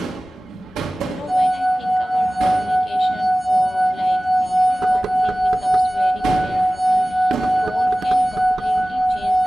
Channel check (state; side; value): normal; both; correlation 0.98